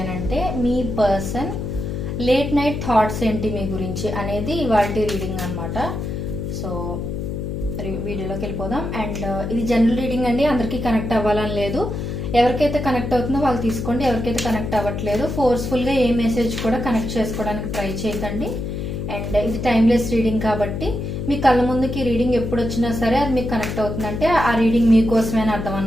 అంటే మీ పర్సన్ లేట్ నైట్ థాట్స్ ఏంటి మీ గురించి అనేది ఇవాల్టి రీడింగ్ అన్నమాట. సో వీడియోలోకి వెళ్ళిపోదాం. అండ్ ఇది జనరల్ రీడింగ్ అండి, అందరికీ కనెక్ట్ అవ్వాలని లేదు. ఎవరికైతే కనెక్ట్ అవుతుందో వాళ్ళు తీసుకోండి, ఎవరికైతే కనెక్ట్ అవ్వట్లేదు ఫోర్స్ఫుల్ గా ఏ మెసేజ్ కూడా కనెక్ట్ చేసుకోవడానికి ట్రై చేయకండి. అండ్ ఇది టైమ్లెస్ రీడింగ్ కాబట్టి మీ కళ్ళ ముందుకి రీడింగ్ ఎప్పుడు వచ్చినా సరే అది మీకు కనెక్ట్ అవుతుందంటే ఆ రీడింగ్ మీకోసమే అర్థం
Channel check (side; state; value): left; noise; hum, 4 dB below the sound